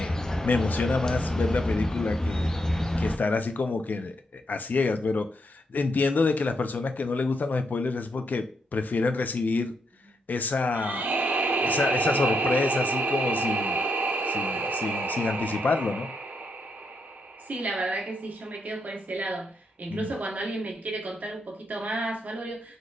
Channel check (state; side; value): normal; both; correlation 0.80